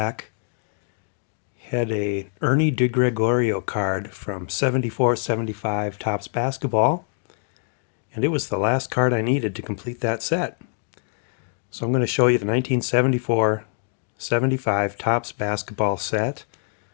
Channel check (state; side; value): silent; right; digital silence